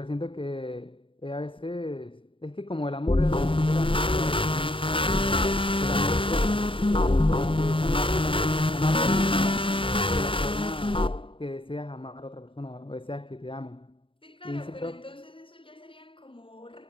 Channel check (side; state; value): right; late; 0.25 ms